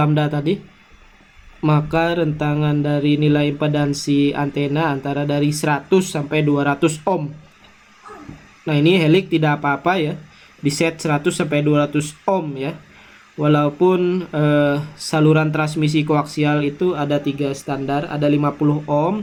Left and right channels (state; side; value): identical; both; correlation 1.00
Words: tadi, maka rentangan dari nilai impedansi antena antara dari 100 sampai 200 ohm. Nah, ini helix tidak apa-apa ya, diset 100 sampai 200 ohm ya. Walaupun saluran transmisi koaksial itu ada 3 standar, ada 50